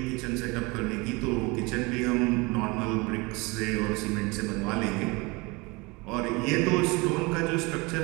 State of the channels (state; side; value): quieter; left; 25.8 dB